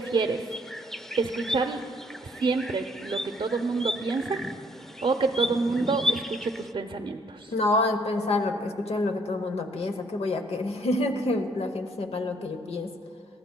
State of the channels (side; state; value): both; normal; correlation 0.66